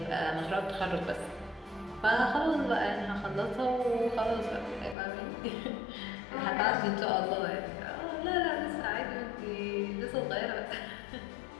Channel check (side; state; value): right; drops out; at 5.0 s